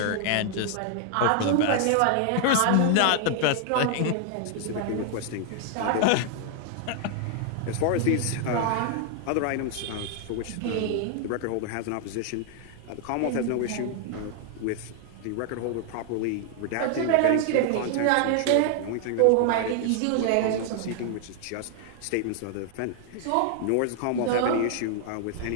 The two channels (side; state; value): both; different; correlation 0.00